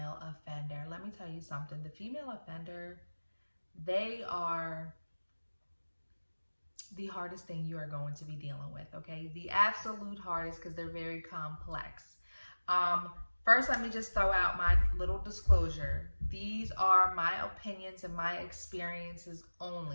offender. Let me tell you something. The female offender, they are the hardest thing you are going to be dealing with, okay? The absolute hardest because they're very complex. Um, First, let me just throw out my little disclosure. These are my opinions and my experiences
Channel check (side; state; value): both; inverted; correlation -1.00